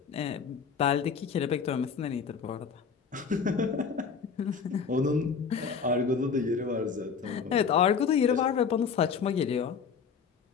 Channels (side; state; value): right; quieter; 6.1 dB